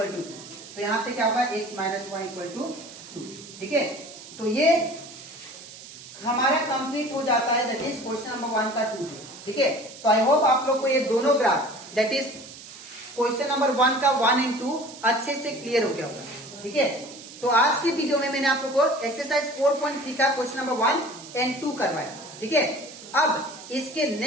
to 2। तो यहाँ पे क्या होगा, x minus y equal to 2। ठीक है, तो ये हमारा कंप्लीट हो जाता है, दैट इज क्वेश्चन नंबर 1 का 2। ठीक है, तो आई होप आप लोग को ये दोनों graph, that is question number 1 का 1 एंड 2 अच्छे से क्लियर हो गया होगा। ठीक है, तो आज की वीडियो में मैंने आप लोग को एक्सरसाइज 4.3 का क्वेश्चन नंबर 1 एंड 2 करवाया। ठीक है, अब इसके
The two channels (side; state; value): right; noise; hiss, 16 dB below the sound